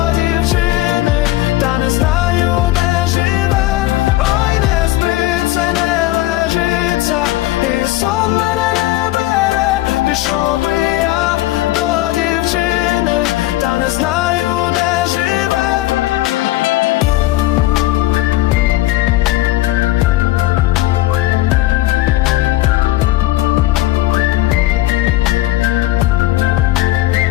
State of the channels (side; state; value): right; quieter; 16.9 dB